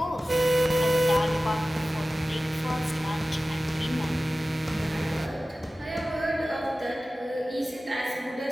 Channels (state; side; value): normal; both; correlation 0.96